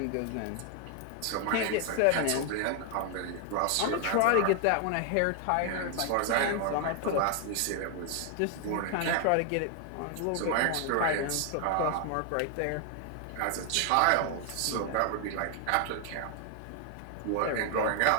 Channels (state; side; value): different; both; correlation 0.00